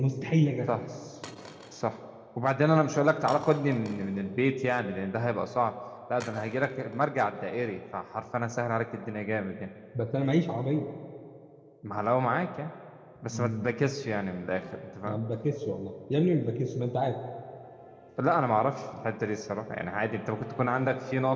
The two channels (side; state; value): both; identical; correlation 1.00